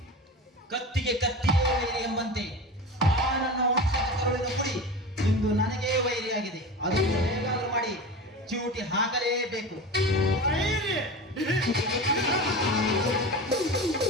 ಕತ್ತಿಗೆ ಕತ್ತಿಯೇ ವೈರಿ ಎಂಬಂತೆ ಆ ನನ್ನ ವಂಶದ ಕರುಳಿನ ಕುಡಿ ಇಂದು ನನಗೇ ವೈರಿಯಾಗಿದೆ. ಅದನ್ನು ಹೇಗಾದರೂ ಮಾಡಿ ಚೂಟಿ ಹಾಕಲೇಬೇಕು.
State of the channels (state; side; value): normal; both; correlation 0.30